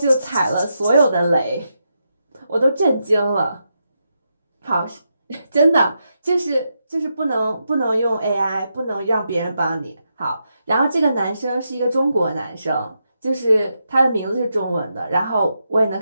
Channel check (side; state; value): both; inverted; correlation -0.85